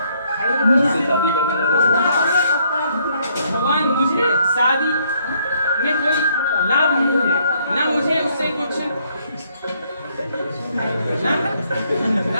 भगवान मुझे शादी में कोई लाभ नहीं है, ना मुझे उससे कुछ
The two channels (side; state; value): both; inverted; correlation -0.68